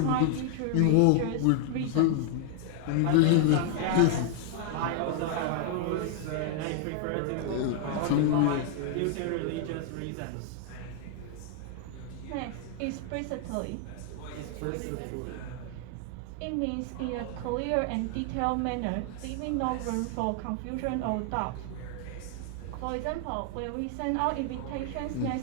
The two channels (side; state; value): both; different; correlation 0.00